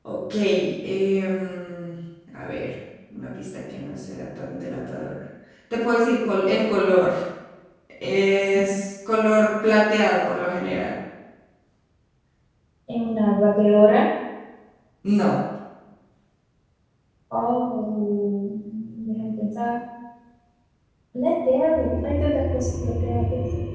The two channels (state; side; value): identical; both; correlation 1.00